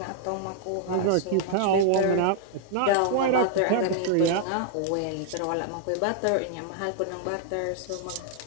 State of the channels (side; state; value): both; different; correlation -0.01